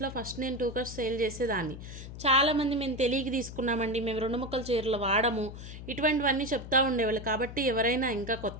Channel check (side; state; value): left; noise; hum, 11 dB below the sound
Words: ఫస్ట్ నేను 2 కట్స్ సేల్ చేసేదాన్ని. చాలామంది మేము తెలియక తీసుకున్నామండి, మేము 2 ముక్కల చీరలు వాడము, ఇటువంటివన్నీ చెప్తూ ఉండేవాళ్ళు. కాబట్టి ఎవరైనా ఇంకా